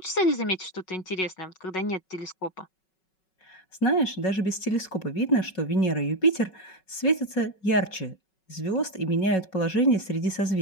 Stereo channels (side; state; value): right; late; 5.4 ms